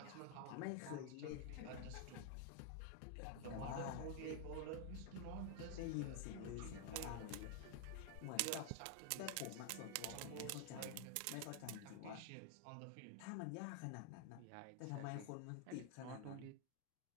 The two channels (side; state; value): both; different; correlation 0.00